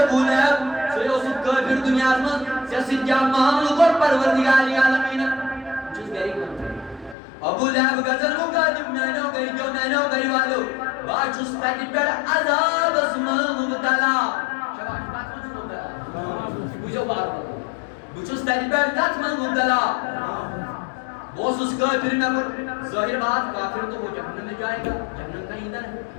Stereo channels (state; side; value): drops out; right; at 7.2 s